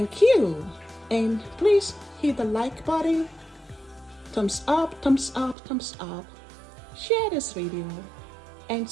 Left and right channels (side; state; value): left; drops out; at 5.6 s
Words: you. And please hit the like button. Thumbs up, thumbs up, thumbs up. Share this video. And